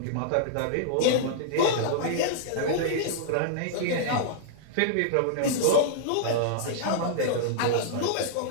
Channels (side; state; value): both; different; correlation -0.02